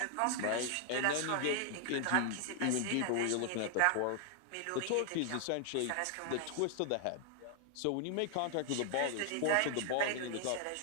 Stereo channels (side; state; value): both; different; correlation 0.00